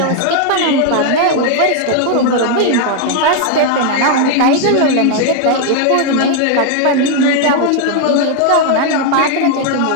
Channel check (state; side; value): different; both; correlation 0.00